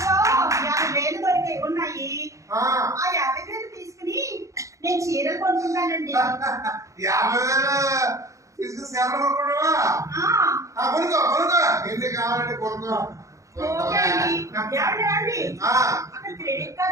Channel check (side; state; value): left; late; 0.15 ms